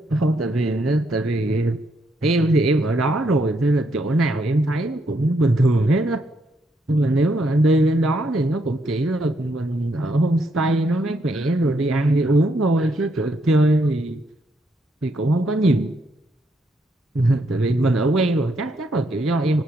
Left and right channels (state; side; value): normal; both; correlation 0.75